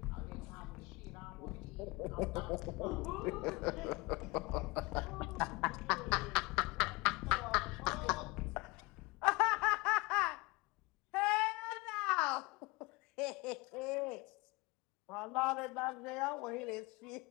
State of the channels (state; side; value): quieter; right; 24.4 dB